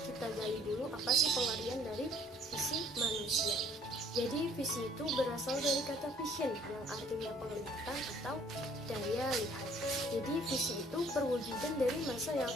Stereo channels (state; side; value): normal; both; correlation 0.59